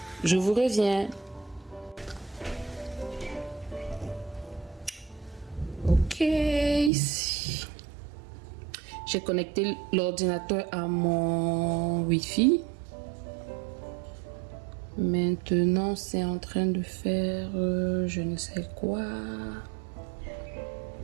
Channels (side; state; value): left; drops out; at 6.9 s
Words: je vous reviens. Ok, ici. J'ai connecté l'ordinateur à mon Wi-Fi. Maintenant, c'est en train de faire je ne sais quoi.